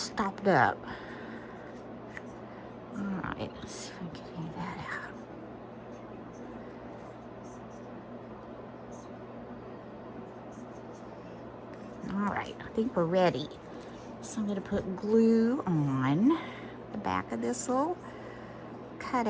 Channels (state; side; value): identical; both; correlation 1.00